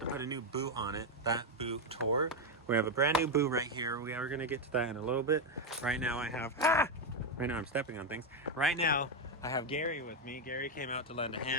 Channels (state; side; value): normal; both; correlation 0.05